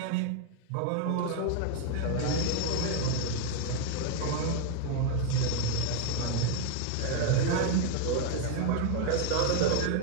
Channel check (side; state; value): both; different; correlation 0.00